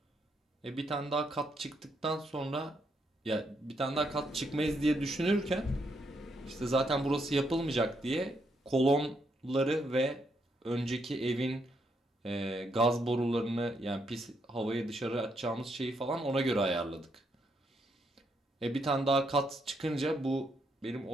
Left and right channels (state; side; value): normal; both; correlation 0.77